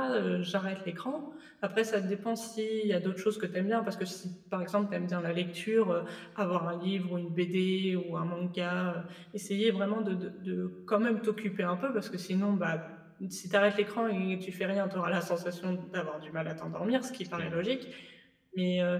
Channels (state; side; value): identical; both; correlation 1.00